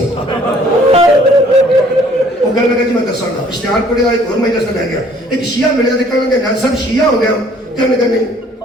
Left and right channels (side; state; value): both; normal; correlation 0.58